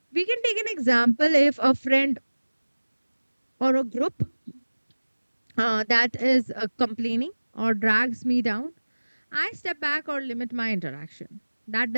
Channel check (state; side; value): inverted; both; correlation -1.00